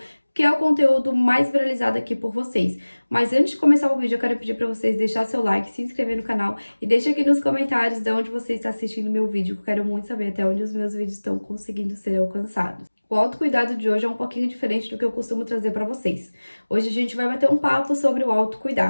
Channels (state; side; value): inverted; both; correlation -1.00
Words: que é o conteúdo mais viralizado aqui por vocês. Mas antes de começar o vídeo, eu quero pedir pra vocês deixar seu like, se inscrever no canal e deixa aqui nos comentários de onde você está assistindo meu vídeo, que eu quero muito saber até onde os meus vídeos estão conseguindo ser alcançados. O autocuidado de hoje é um pouquinho diferente do que eu costumo trazer pra vocês. Hoje a gente vai bater um papo sobre o